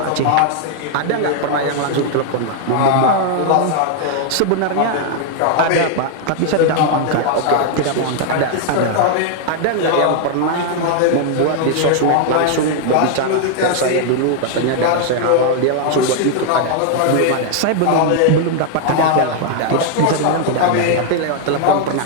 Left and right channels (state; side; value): different; both; correlation 0.00